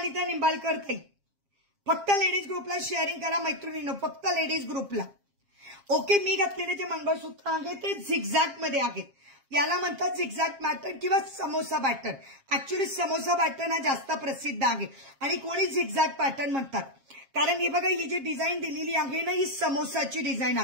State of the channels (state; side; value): late; left; 7.4 ms